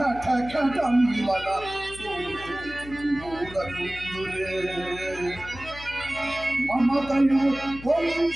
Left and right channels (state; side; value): noise; left; hum, 15 dB below the sound